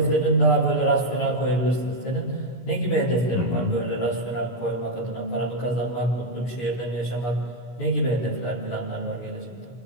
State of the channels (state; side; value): late; right; 17 ms